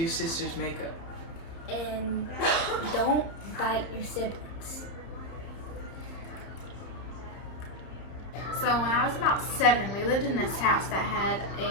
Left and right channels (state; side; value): late; right; 30 ms